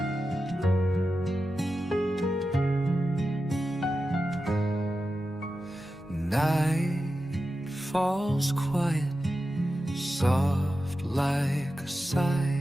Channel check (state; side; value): normal; both; correlation 0.91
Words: Night falls quiet, soft like a